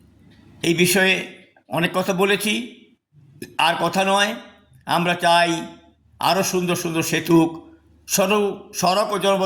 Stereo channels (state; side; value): identical; both; correlation 1.00